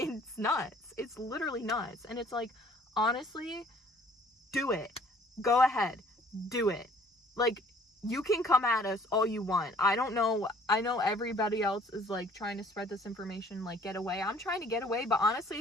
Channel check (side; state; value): both; normal; correlation 0.56